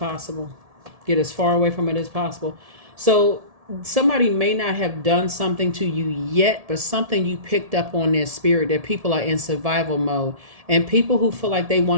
Get as far away from it as possible. So somebody may not have done something to you yet, but something you picked up on their spirit, that people are in survival mode. And people who feel like they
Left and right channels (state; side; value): late; left; 1.7 ms